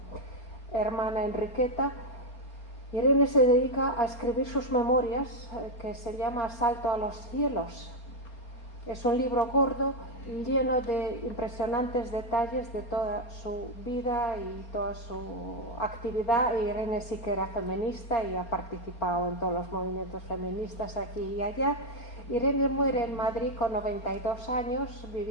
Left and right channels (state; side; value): late; right; 4.3 ms